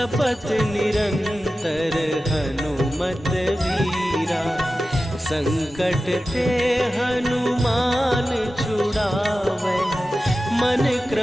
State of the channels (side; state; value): both; normal; correlation 0.94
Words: निरंतर हनुमत वीरा। संकट ते हनुमान छुड़ावे, मन